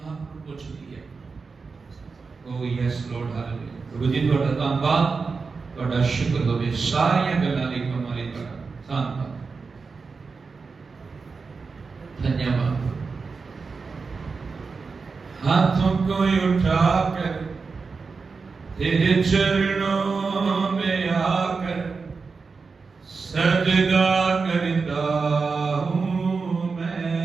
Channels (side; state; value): left; quieter; 4.7 dB